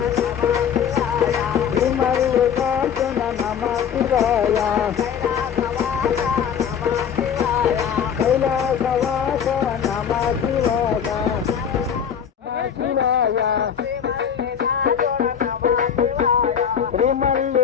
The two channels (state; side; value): quieter; right; 8.0 dB